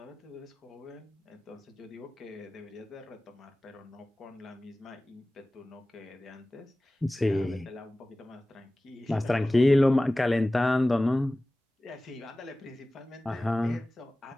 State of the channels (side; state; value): both; normal; correlation 0.98